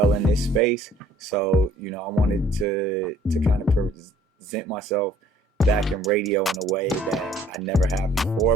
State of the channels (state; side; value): normal; both; correlation 0.58